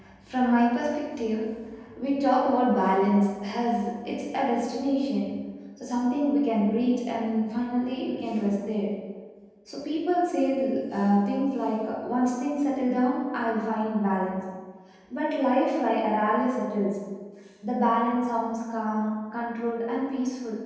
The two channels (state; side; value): identical; both; correlation 1.00